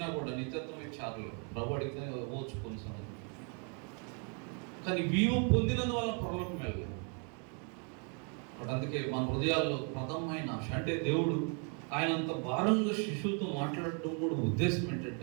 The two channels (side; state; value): left; quieter; 38.1 dB